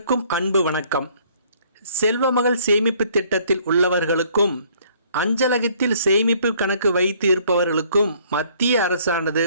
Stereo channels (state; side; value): inverted; both; correlation -0.60